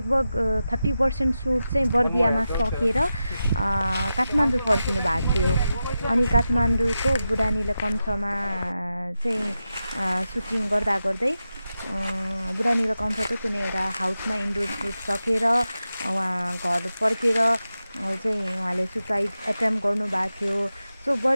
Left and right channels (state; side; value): inverted; both; correlation -0.91